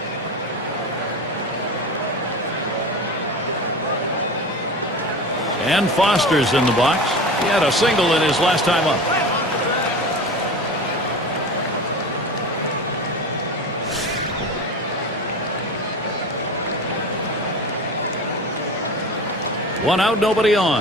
And Foster's in the box. He had a single in his last time up. One out, nobody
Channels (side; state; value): both; normal; correlation 0.31